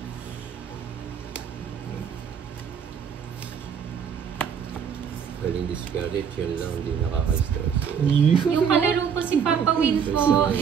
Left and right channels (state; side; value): quieter; left; 7.3 dB